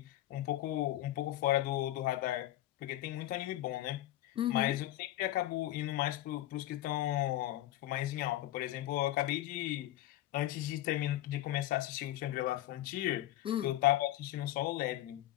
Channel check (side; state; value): right; quieter; 14.5 dB